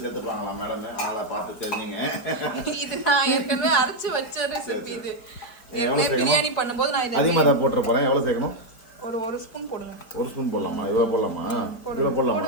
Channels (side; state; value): right; late; 4.5 ms